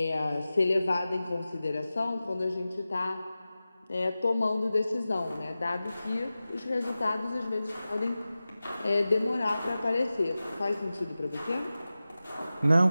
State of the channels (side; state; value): both; inverted; correlation -0.95